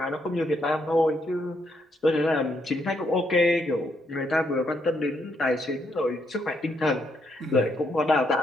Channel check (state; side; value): normal; both; correlation 0.76